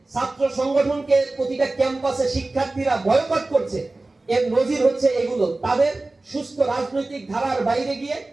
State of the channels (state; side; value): quieter; left; 3.1 dB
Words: সংগঠনকে প্রতিটা ক্যাম্পাসে শিক্ষার্থীরা বয়কট করছে, এর নজির হচ্ছে এগুলো। তাদের সুস্থ রাজনৈতিক ধারার বাইরে গিয়ে